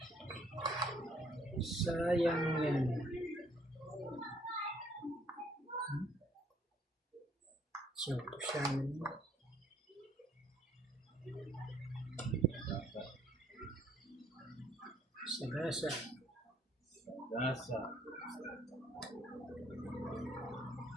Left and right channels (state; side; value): normal; both; correlation 0.64